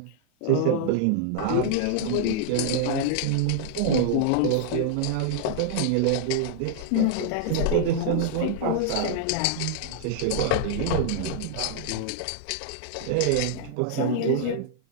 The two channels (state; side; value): different; both; correlation -0.01